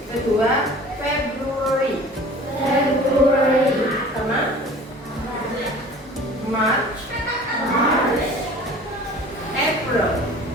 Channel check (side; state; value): both; normal; correlation 0.44